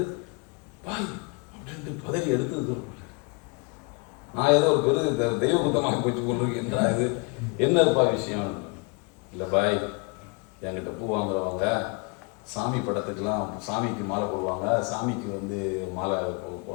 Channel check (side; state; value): right; quieter; 32.1 dB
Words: பாய் அப்படின்ட்டு பதறி எடுத்து தூர போட்டேன். நான் ஏதோ ஒரு பெரு தெய்வ குத்தமாக போச்சு கொண்டிருக்கேன்றா, இது என்னப்பா விஷயம்? இல்லை பாய், என்கிட்ட பூ வாங்குறவங்க சாமி படத்துக்கெல்லாம் சாமிக்கு மாலை போடுவாங்க, சாமிக்கு வந்து மாலை